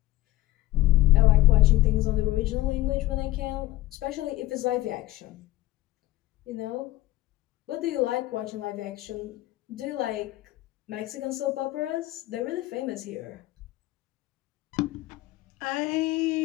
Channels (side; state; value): right; quieter; 16.8 dB